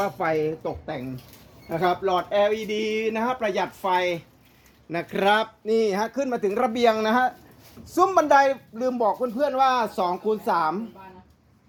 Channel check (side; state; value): both; identical; correlation 1.00